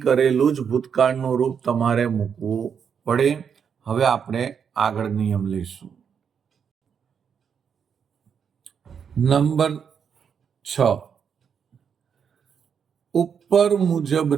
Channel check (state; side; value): quieter; left; 7.2 dB